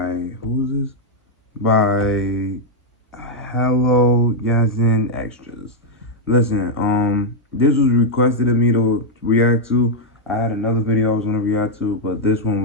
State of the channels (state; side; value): normal; both; correlation -0.03